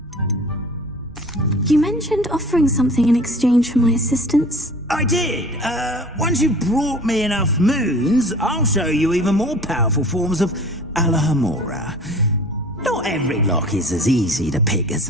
You mentioned offering something in exchange for my assistance. I did. Once you've brought me enough moons, I'll show you even more powerful forms of Alahamora. Not every lock is as easy to pick as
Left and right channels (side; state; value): both; normal; correlation 0.44